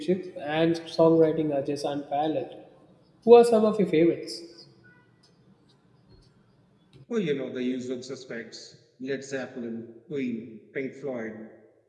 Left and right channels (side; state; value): both; identical; correlation 1.00